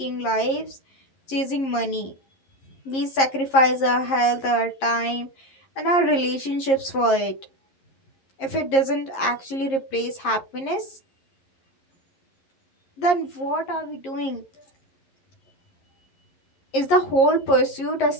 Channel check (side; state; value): right; late; 11 ms